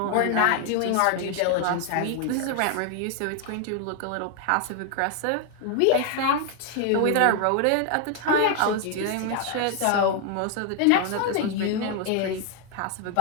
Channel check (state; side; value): different; both; correlation 0.00